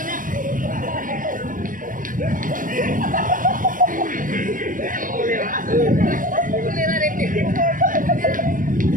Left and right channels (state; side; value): late; left; 0.39 ms